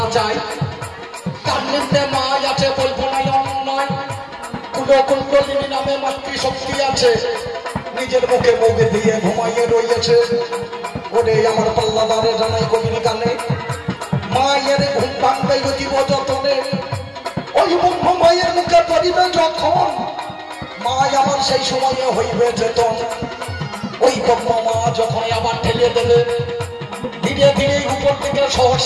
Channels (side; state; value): both; identical; correlation 1.00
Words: যায়, তার নিম্নে মা আছে বলবো না অন্যায়। কুণ্ডলিনী নামে মাতৃশক্তি আছে, নিজের মুখে মুখে দিয়ে ঘুমাইয়ে রয়েছে। ওরে আমার পাল্লাদারে জানাই কবির গানে, মায়ের ঘুম ভাঙবে জীব যতনে। ওই ব্রহ্ম মায়ের মুখে পড়িবে যখন, মা আমার সেই সময়ে হইবে চেতন। ওই ব্রহ্ম মা যখন আবার ঠেলে দেবে, ধীরে ধীরে উপর থেকে